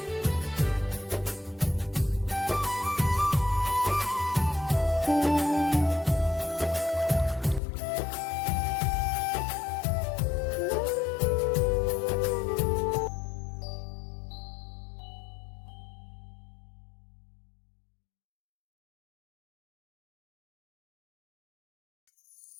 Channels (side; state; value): right; drops out; at 7.6 s